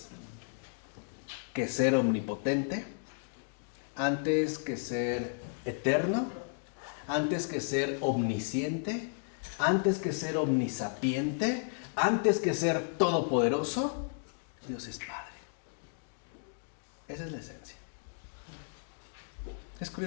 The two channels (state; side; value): silent; right; digital silence